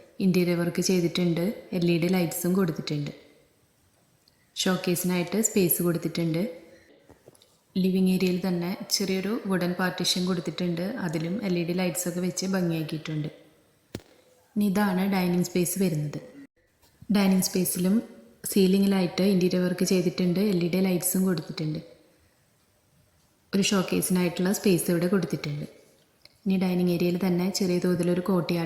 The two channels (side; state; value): both; identical; correlation 1.00